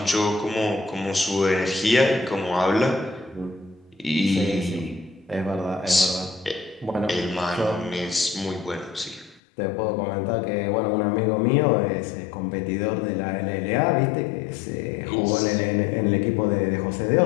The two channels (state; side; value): drops out; right; at 9.4 s